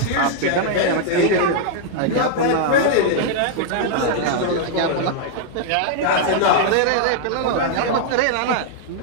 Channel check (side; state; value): both; different; correlation -0.01